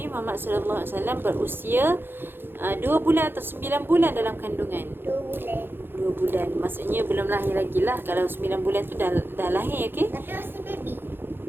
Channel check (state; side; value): late; left; 0.10 ms